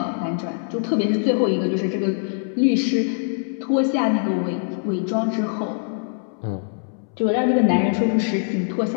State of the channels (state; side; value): silent; right; 64 dB below the other